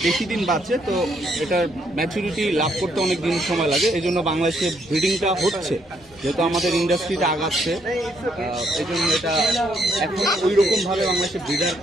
বেশি দিন বাঁচে তো এটার ম্যাচুরিটি লাভ করতে অনেক দিন সময় লাগে। এই জন্য বাংলাদেশে ব্রিডিংটা হচ্ছে, যেহেতু আমাদের ইন্ডাস্ট্রিটা আগাচ্ছে। এই জন্য এটা এখন ওই রকমভাবে বাংলাদেশে ব্রিডার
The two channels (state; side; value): normal; both; correlation 0.72